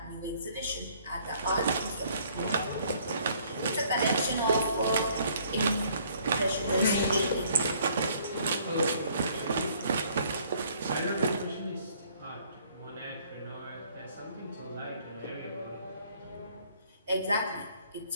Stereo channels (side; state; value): both; inverted; correlation -0.61